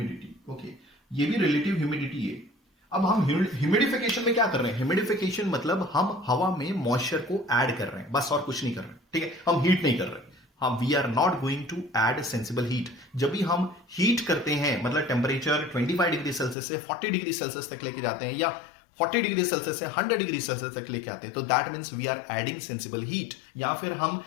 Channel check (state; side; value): drops out; right; at 16.6 s